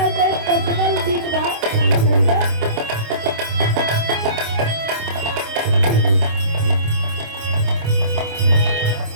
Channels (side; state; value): left; late; 26 ms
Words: के पर्सनल गीत बा